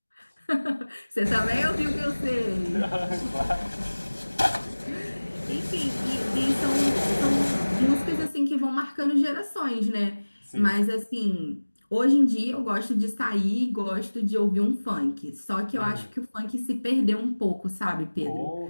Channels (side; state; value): both; inverted; correlation -1.00